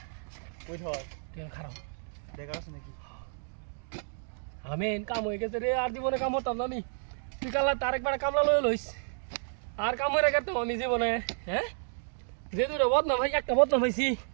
কই ধর তেল খারাপ দেখা আছে নাকি আমেন কাম হয়ে গেছে রে আর জীবনে কাম হতাম না নি তুই কালা তার একবার কামলা লই লইস আর কাম হয়ে গেছে আমি জীবনে হ্যাঁ যে দুটো বদনাম ভাই একটা বদনাম হইছি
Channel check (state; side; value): silent; left; digital silence